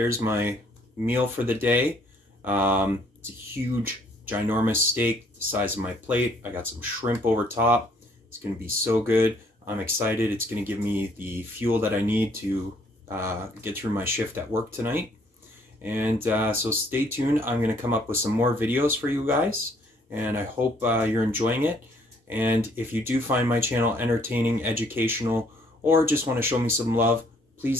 my meal for the day. It's a huge, ginormous steak the size of my plate. I got some shrimp over top. It's going to be so good. I'm excited. It's going to give me the fuel that I need to get through my shift at work tonight. And so stay tuned. I'm going to come up with some more videos for you guys. And I hope you're enjoying it. And if you do find my channel entertaining, educational, or just want to show me some love,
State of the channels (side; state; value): both; normal; correlation 0.64